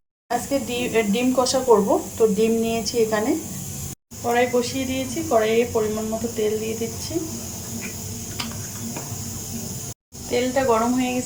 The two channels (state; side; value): identical; both; correlation 1.00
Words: আজকে ডিম কষা করব। তো ডিম নিয়েছি, এখানে কড়াই বসিয়ে দিয়েছি, কড়াইয়ে পরিমাণ মতো তেল দিয়ে দিচ্ছি। তেলটা গরম হয়ে